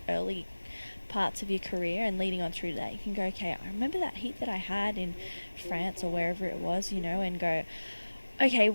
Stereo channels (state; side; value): inverted; both; correlation -1.00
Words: early parts of your career and leading on through that. You can go, okay, I remember that heat that I had in France or wherever it was, you know, and go, okay,